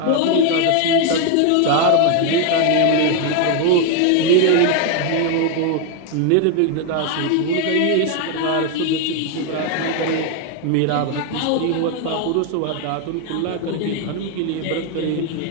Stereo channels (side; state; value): both; different; correlation 0.01